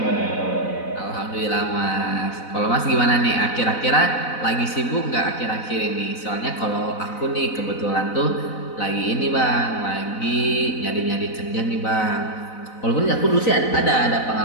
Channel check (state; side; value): late; right; 4.0 ms